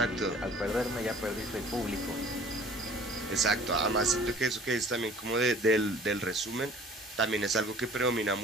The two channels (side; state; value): both; normal; correlation 0.50